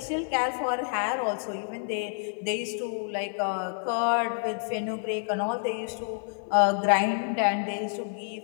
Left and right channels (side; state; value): right; silent; 59 dB below the other